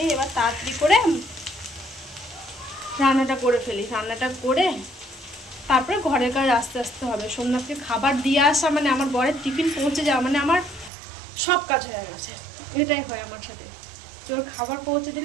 এবার তাড়াতাড়ি করে রান্নাটা করে ফেলি। রান্নাটা করে তারপরে ঘরের কাজ আস্তে আস্তে হবে। সোমনাথকে খাবার দিয়ে আসা মানে আমার বরের টিফিন পৌঁছে যাওয়া মানে আমার সব কাজ হয়ে গেছে। এটাই হয় আমার সাথে, ওর খাবার পৌঁছে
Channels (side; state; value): left; drops out; at 10.9 s